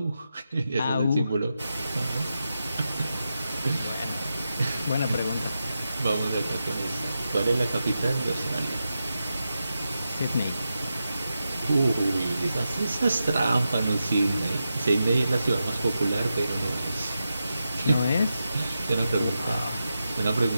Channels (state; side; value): inverted; both; correlation -0.89